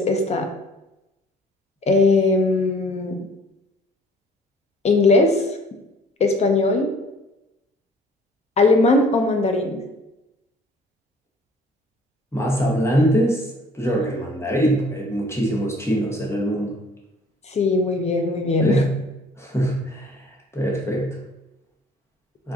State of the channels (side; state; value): both; normal; correlation 0.54